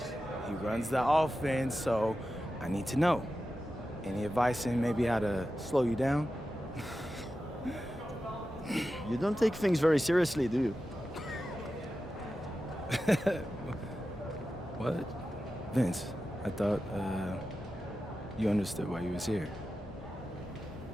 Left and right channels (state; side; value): normal; both; correlation 0.92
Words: He runs the offense, so I need to know. Any advice in maybe how to slow you down? You don't take things very seriously, do you? What? Vince, I thought, you understood why you was here.